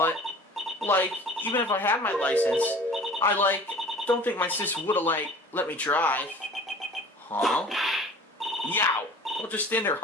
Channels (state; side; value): normal; both; correlation 0.45